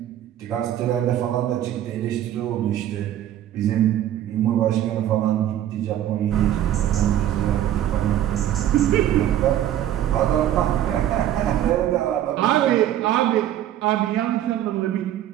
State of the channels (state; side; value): quieter; left; 11.9 dB